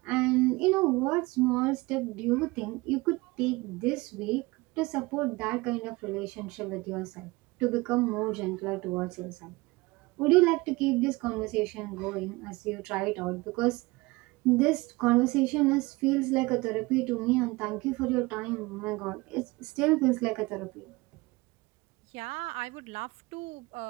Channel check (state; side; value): quieter; left; 22.8 dB